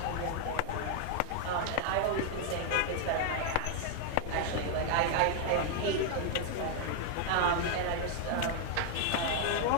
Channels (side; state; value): both; different; correlation 0.00